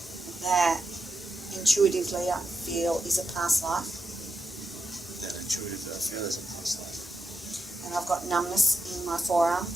that intuitively I feel is a past life, That intuitively I feel is a past life. and I've got numbness in my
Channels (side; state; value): both; normal; correlation 0.86